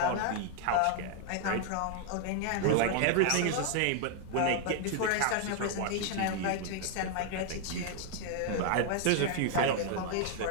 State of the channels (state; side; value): different; both; correlation 0.00